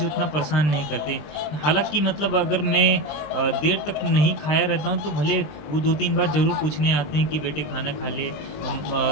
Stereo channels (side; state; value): right; late; 20 ms